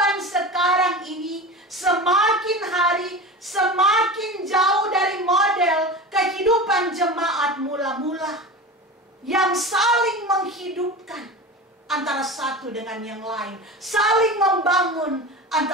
sekarang ini semakin hari semakin jauh dari model kehidupan jemaat mula-mula yang saling menghidupkan antara satu dengan yang lain, saling membangun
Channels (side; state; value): both; normal; correlation 0.30